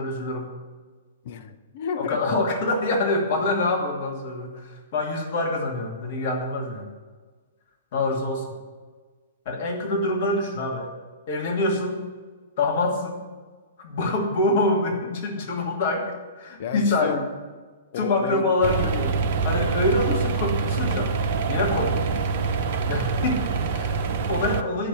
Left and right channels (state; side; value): inverted; both; correlation -0.35